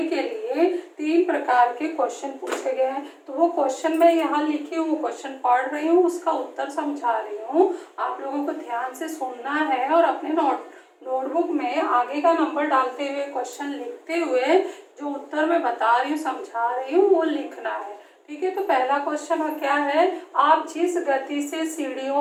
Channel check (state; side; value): identical; both; correlation 1.00